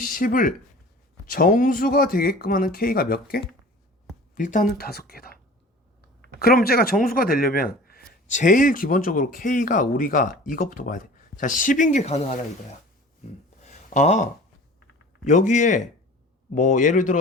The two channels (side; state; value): both; normal; correlation 0.42